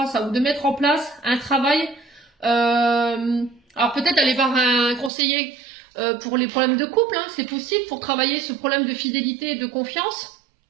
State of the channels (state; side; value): drops out; left; at 5.1 s